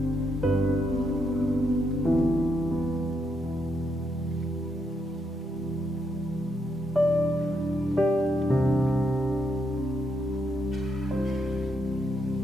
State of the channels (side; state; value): both; normal; correlation 0.78